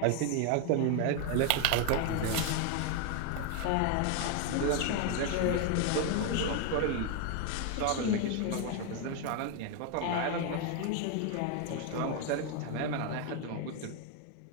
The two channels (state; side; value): different; both; correlation 0.01